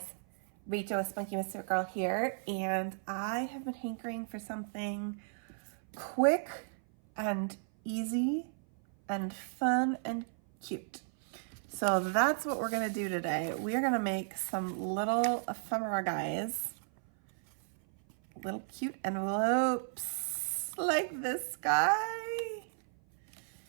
Rachel with Spunky Misfit Girl here, and I have been hankering for something quick and easy and fun and cute. So that's what we're gonna do today. We are gonna make some little ephemera guys, little cute envelopes like this guy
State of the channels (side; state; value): left; silent; 55 dB below the other